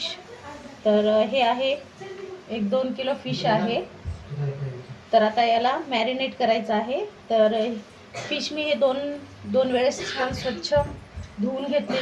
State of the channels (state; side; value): identical; both; correlation 1.00